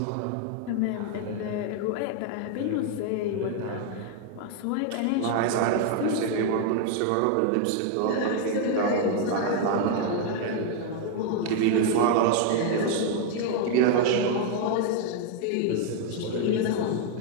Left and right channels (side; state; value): both; different; correlation 0.00